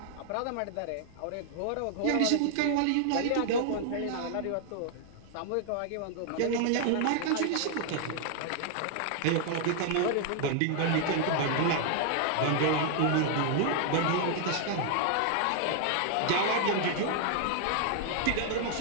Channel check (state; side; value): different; both; correlation 0.00